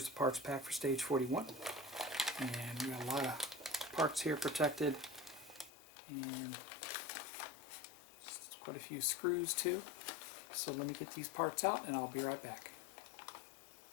the parts pack for stage 41. And we got a lot of parts here protected, and quite a few screws too. So let me get these parts out and I'll be right back.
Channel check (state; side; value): drops out; right; at 5.7 s